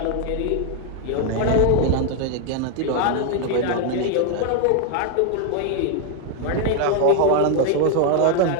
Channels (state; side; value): different; both; correlation 0.00